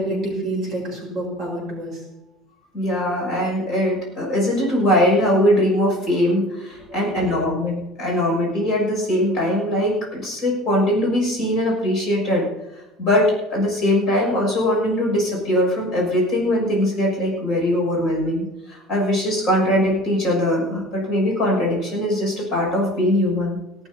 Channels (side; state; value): both; normal; correlation 0.42